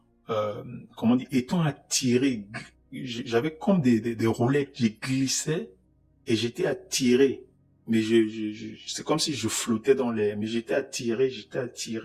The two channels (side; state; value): both; identical; correlation 1.00